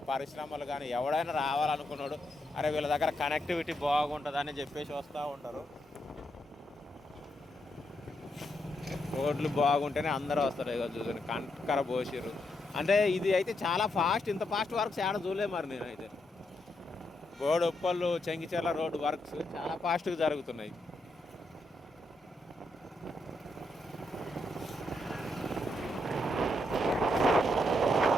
పరిశ్రమలు కానీ ఎవడైనా రావాలనుకున్నాడు, అరే వీళ్ళ దగ్గర కనెక్టివిటీ బాగుంటుంది అని చెప్పేసి వస్తూ ఉంటారు. రోడ్లు బాగుంటేనే అందరూ వస్తారు. ఇక చూసాను కంకర పోసిరు. అంటే ఇది అయితే చాలా ఫాస్ట్. ఇంత ఫాస్ట్ వర్క్స్ ఏడ చూడలే మరి నేనైతే. బోడుప్పల్ చెంగిచెర్ల రోడ్డు వర్క్స్ చాలా ఫాస్ట్గా జరుగుతున్నాయి.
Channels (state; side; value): normal; both; correlation 0.81